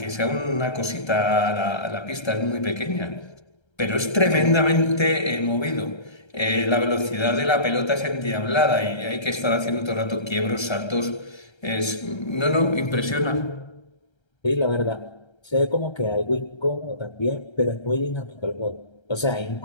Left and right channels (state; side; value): late; right; 1.3 ms